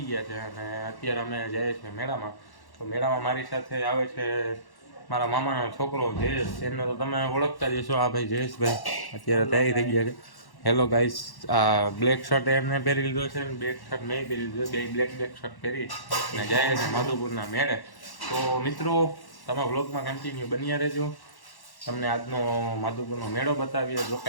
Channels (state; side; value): late; right; 1.1 ms